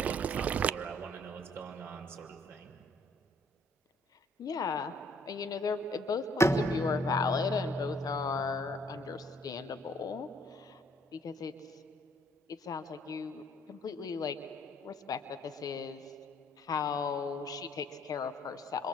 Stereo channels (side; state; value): both; normal; correlation 0.63